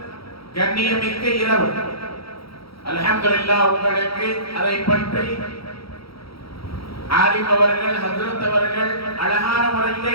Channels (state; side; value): late; right; 0.75 ms